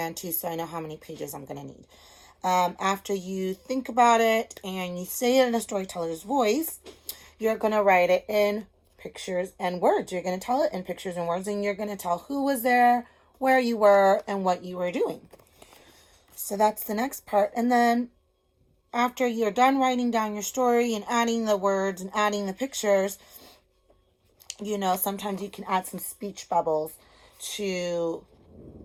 two, so I know how many pages I'm going to need. After you think about it and you say it in a storyteller's voice, you're going to write it in pictures and words. You're going to tell it in pictures and words, and you're going to tell who was there, where you were, and what you were doing. So that's the next part. And then after you're done writing down your story and adding the words and adding the pictures, sometimes you can add some speech bubbles to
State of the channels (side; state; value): both; identical; correlation 1.00